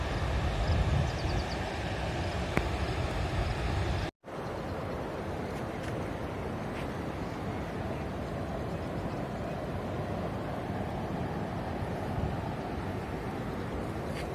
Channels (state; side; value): identical; both; correlation 1.00